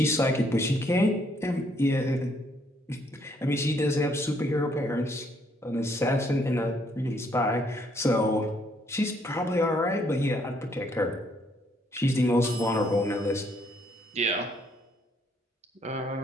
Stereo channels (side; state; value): both; normal; correlation 0.68